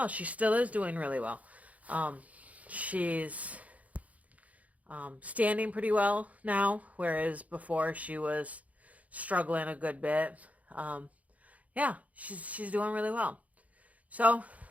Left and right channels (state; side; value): late; left; 0.070 ms